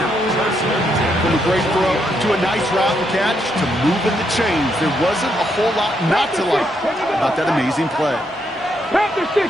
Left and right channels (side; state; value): both; normal; correlation 0.77